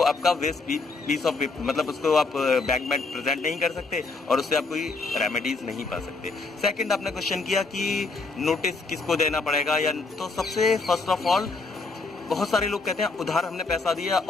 आपका वेस्ट पीस ऑफ, मतलब उसको आप बैंक में प्रेजेंट नहीं कर सकते और उससे आप कोई रेमेडीज नहीं पा सकते। सेकंड, आपने क्वेश्चन किया कि नोटिस किसको देना पड़ेगा, या तो सबसे फर्स्ट ऑफ ऑल, बहुत सारे लोग कहते हैं उधार हमने पैसा दिया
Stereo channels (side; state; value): right; quieter; 3.8 dB